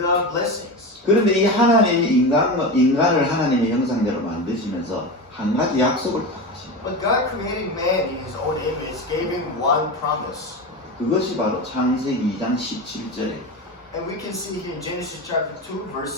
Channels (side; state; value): both; normal; correlation 0.23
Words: blessings. 그런데 이 하나님이 인간을 하나님의 형상대로 만드시면서 한 가지 약속을 딱 하십니다. But God creating man in his own image, gave him one promise. 그것이 바로 창세기 2장 17절에 And we can see here in Genesis chapter 2, verse